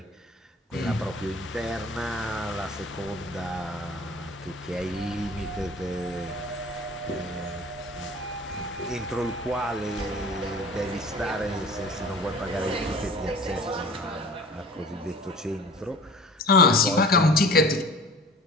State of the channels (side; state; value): both; normal; correlation 0.44